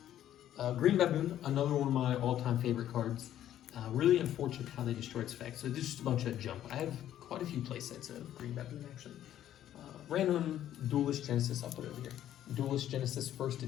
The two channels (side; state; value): right; quieter; 11.7 dB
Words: Green Baboon, another one of my all-time favorite cards. Really unfortunate how they destroyed its effects. So there's just a bunch of jump. I have quite a few playsets of Green Baboon, actually. Random Duelist Genesis, I'll put it over here. Duelist Genesis 1st